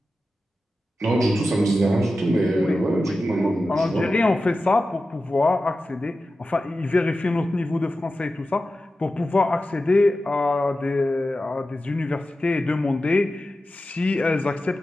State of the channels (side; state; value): both; normal; correlation 0.93